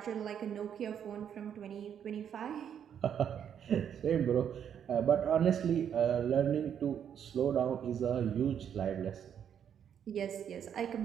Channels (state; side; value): quieter; left; 8.7 dB